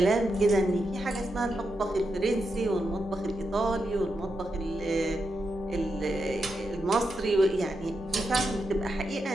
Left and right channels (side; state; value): both; normal; correlation 0.85